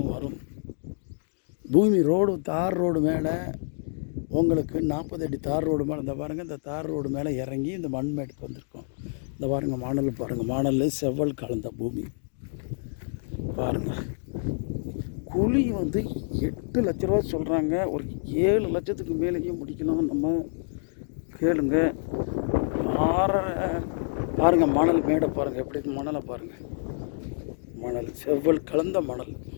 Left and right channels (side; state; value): right; silent; digital silence